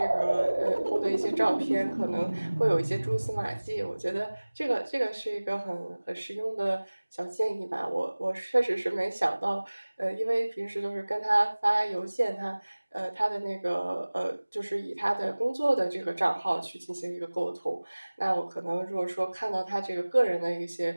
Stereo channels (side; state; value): both; inverted; correlation -1.00